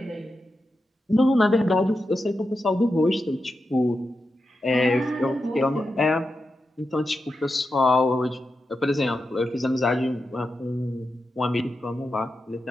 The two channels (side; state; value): both; normal; correlation 0.89